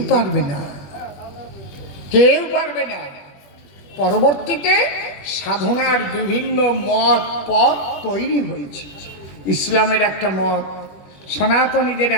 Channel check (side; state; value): right; late; 20 ms